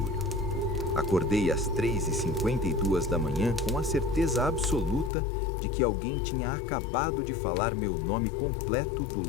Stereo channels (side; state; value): right; drops out; at 5.1 s